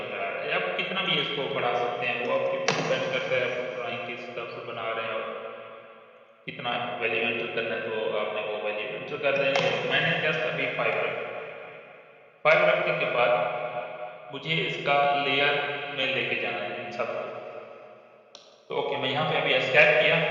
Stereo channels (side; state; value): both; identical; correlation 1.00